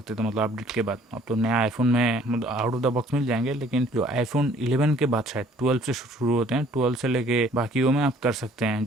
थे, मतलब अपडेट के बाद। अब तो नया आईफोन में मतलब आउट ऑफ द बॉक्स मिल जाएंगे, लेकिन जो iPhone 11 के बाद शायद 12 से शुरू होते हैं, 12 से लेके बाकियों में आप कर सकते हैं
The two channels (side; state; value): both; normal; correlation 0.57